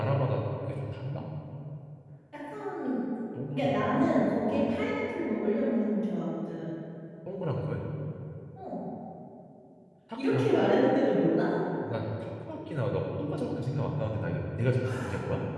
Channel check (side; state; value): both; identical; correlation 1.00